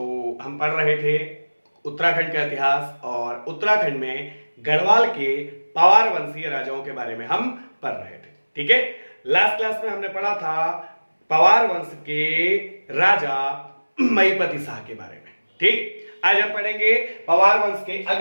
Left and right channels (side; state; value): both; inverted; correlation -1.00